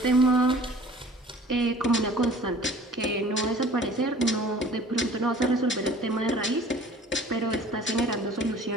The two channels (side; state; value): both; normal; correlation 0.48